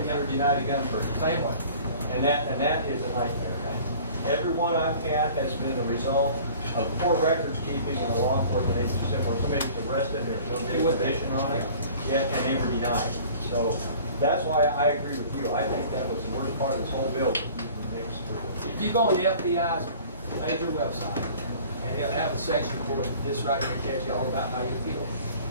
you were denied a gun purchase. Same way. And that is a nightmare. Every one I've had has been a result of poor records keeping in a law enforcement agency where somebody's arrested, there's no information on it, yet and they were denied. So that's why I agree with you. I think that was the worst part of this whole bill. If you go on the FBI's major website, and they'll have a section for this right here, tells you all about how you feel.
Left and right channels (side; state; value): both; inverted; correlation -0.47